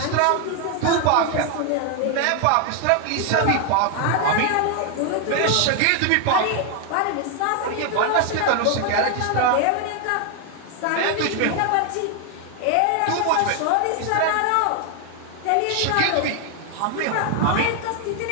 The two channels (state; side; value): different; both; correlation 0.01